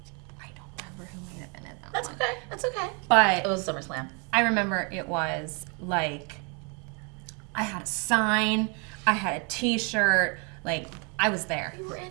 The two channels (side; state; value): left; quieter; 34.8 dB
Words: remember who made it in that That's one. okay. That's okay. But it was SummerSlam. I remember it was I had a sign. I had a T-shirt. I was there. You were in